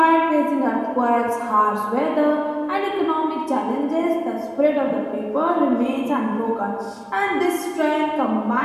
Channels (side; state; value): both; identical; correlation 1.00